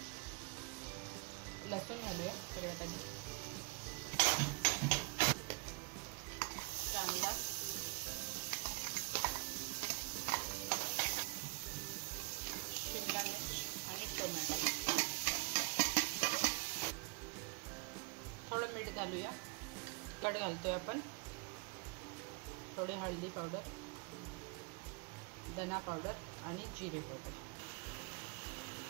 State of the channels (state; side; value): quieter; left; 27.5 dB